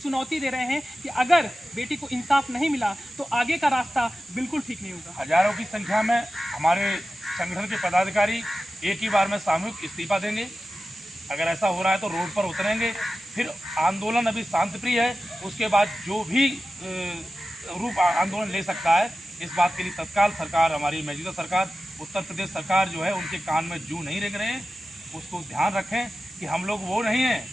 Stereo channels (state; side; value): normal; both; correlation 0.94